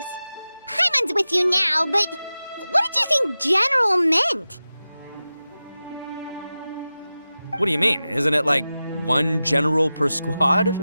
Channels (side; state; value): both; inverted; correlation -0.95